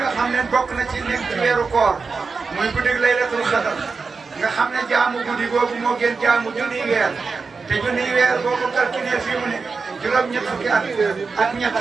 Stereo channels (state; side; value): quieter; left; 4.7 dB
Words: nga xam ne bokk na ci nekk ci weeru koor muy guddi laylatul xadar nga xam ne jaamu guddi googu moo gën jaamu junniy weer te junniy weer boo ko calculé fii mu ne juróom-ñett fukki at